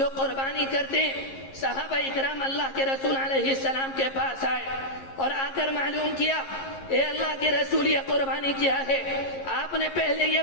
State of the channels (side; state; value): right; late; 11 ms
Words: قربانی کرتے ہیں۔ صحابہ اکرام اللہ کے رسول علیہ السلام کے پاس آئے اور آ کر معلوم کیا اے اللہ کے رسول یہ قربانی کیا ہے؟ آپ نے پہلے یہ